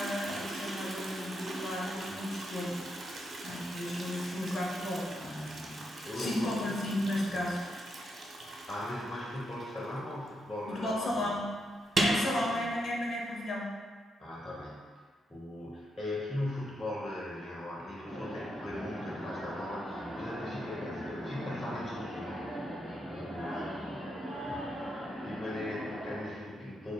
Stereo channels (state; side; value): normal; both; correlation 0.81